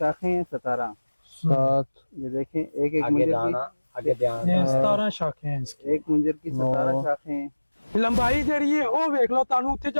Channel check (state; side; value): inverted; both; correlation -1.00